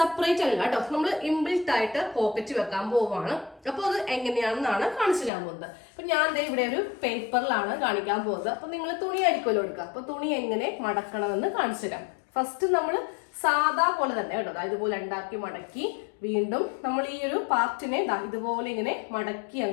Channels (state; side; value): drops out; right; at 5.3 s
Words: അല്ല കേട്ടോ, നമ്മൾ ഇൻബിൽറ്റ് ആയിട്ട് പോക്കറ്റ് വെക്കാൻ പോവുകയാണ്. അപ്പോൾ അത് എങ്ങനെയാണെന്നാണ് കാണിച്ചു തരാൻ പോകുന്നത്. അപ്പൊ ഞാൻ ഇവിടെ ഒരു പേപ്പറിലാണ് കാണിക്കാൻ പോകുന്നത്. അപ്പൊ നിങ്ങൾ തുണി ആയിരിക്കുമല്ലോ എടുക്കുക. അപ്പൊ തുണി എങ്ങനെ മടക്കണമെന്ന് കാണിച്ചു തരാം. ഫസ്റ്റ് നമ്മൾ സാധാ പോലെ തന്നെ കേട്ടോ, ഇതുപോലെ ഉണ്ടാക്കി മടക്കി വീണ്ടും നമ്മൾ ഈ ഒരു പാർട്ടിനെ ഇതുപോലെ ഇങ്ങനെ മടക്കി